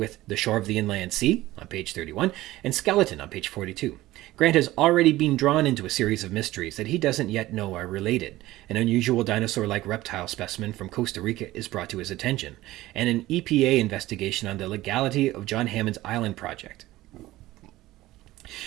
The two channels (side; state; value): left; quieter; 16.8 dB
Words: The Shore of the Inland Sea, on page 31, and Skeleton, on page 42. Grant has already been drawn into a series of mysteries that he doesn't yet know are related. An unusual dinosaur-like reptile specimen from Costa Rica is brought to his attention, and an EPA investigation on the legality of John Hammond's island project.